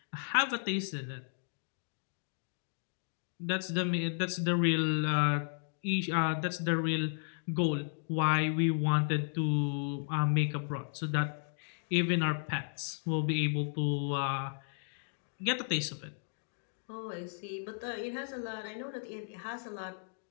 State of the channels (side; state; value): right; silent; digital silence